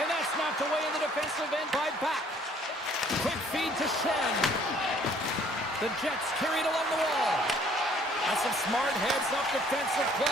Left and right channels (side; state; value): both; normal; correlation 0.59